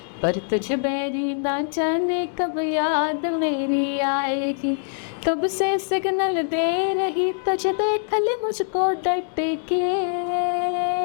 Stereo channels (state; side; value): silent; right; digital silence